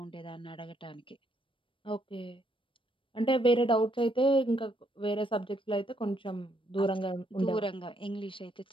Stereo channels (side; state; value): right; late; 0.25 ms